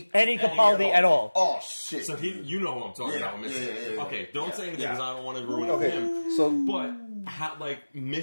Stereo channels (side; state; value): both; inverted; correlation -1.00